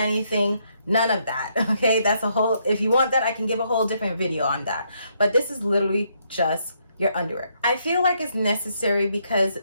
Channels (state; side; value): inverted; both; correlation -0.74